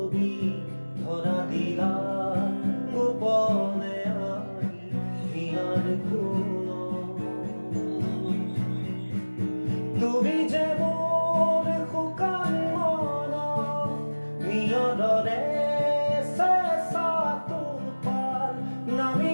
ধরা দিলা গোপনে আনি হিয়ার কোন তুমি যে মোর শুকান মন নিয়দৰে চেঁচা তোপাল নামি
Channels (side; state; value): both; inverted; correlation -1.00